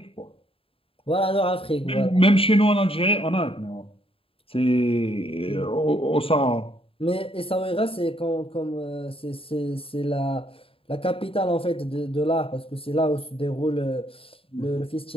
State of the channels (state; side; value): late; right; 0.27 ms